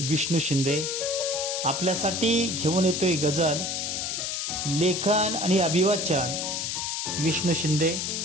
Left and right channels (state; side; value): noise; left; hiss, 2 dB below the sound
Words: शिंदे आपल्यासाठी घेऊन येतोय गझल. लेखन आणि अभिवाचन विष्णू शिंदे.